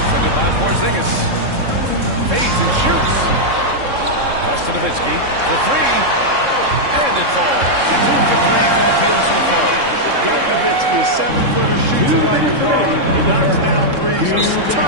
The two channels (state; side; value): late; left; 3.7 ms